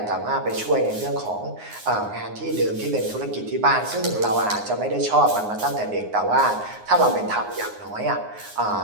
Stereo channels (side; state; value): left; late; 9.6 ms